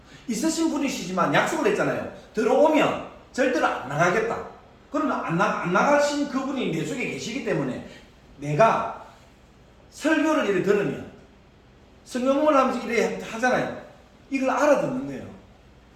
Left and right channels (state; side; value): identical; both; correlation 1.00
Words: 있으신 분이시지만 약속을 했잖아요. 들어오면 절대로 안 나가겠다. 그러면 안 나가신 그분이 내 속에 계시기 때문에 내가 설교를 이렇게 들으면 성경을 하면서 이렇게 하잖아요. 이걸 알아듣는 거예요.